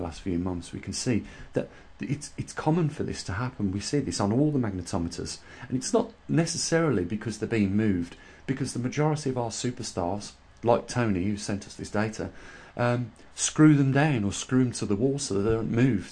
last few months, we can see that it's common for this to happen. We see this on all the magnetometers, and it's not necessarily because they're being moved, because the majority of our superstars, like Tony, who sent us this data, screw them down or screw them to the wall so they don't move.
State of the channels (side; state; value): both; identical; correlation 1.00